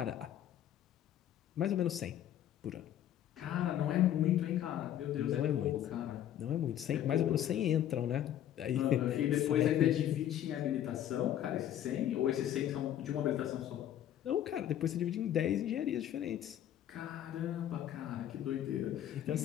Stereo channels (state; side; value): quieter; right; 11.3 dB